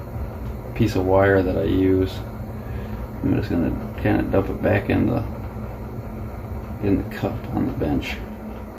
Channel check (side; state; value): both; identical; correlation 1.00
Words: piece of wire that I use, I'm just gonna kind of dump it back in the cup on the bench.